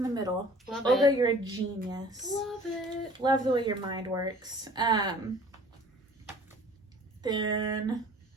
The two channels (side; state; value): both; normal; correlation 0.49